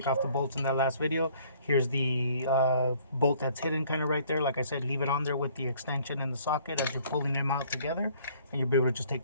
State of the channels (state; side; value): inverted; both; correlation -0.58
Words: off the bolts in that last video. Here's the bolt that's hidden kind of right there. Like I said, leave it on there with the extension and the socket as you're pulling them out together, and you'll be able to just take